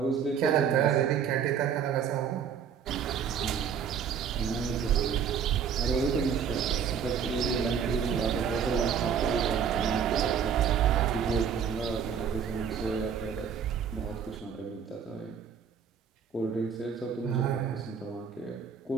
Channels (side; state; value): left; quieter; 7.4 dB